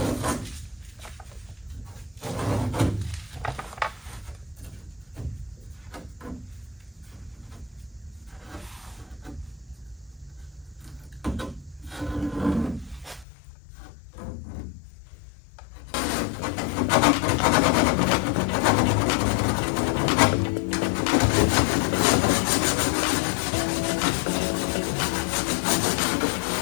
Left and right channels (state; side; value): drops out; right; at 13.2 s